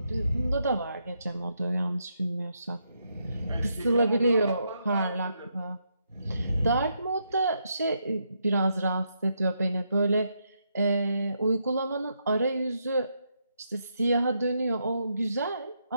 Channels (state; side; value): inverted; both; correlation -0.79